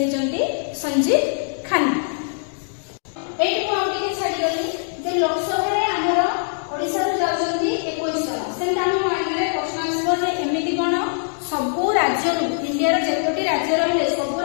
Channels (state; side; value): silent; right; digital silence